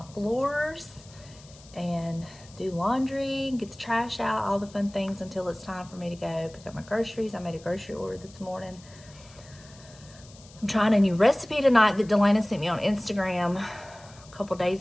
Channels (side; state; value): left; noise; hiss, 23 dB below the sound